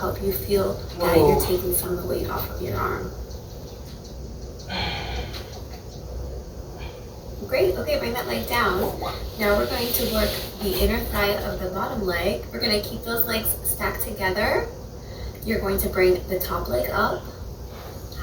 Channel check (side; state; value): both; identical; correlation 1.00